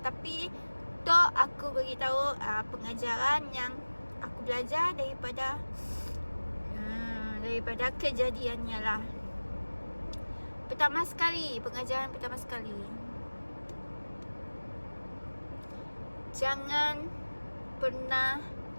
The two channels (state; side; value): inverted; both; correlation -1.00